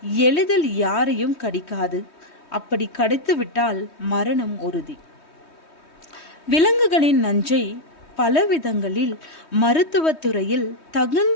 எளிதில் யாரையும் கடிக்காது. அப்படி கடித்து விட்டால் மரணம் உறுதி. விலங்குகளின் நஞ்சை பல விதங்களில் மருத்துவத்துறையில்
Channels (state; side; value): late; right; 3.2 ms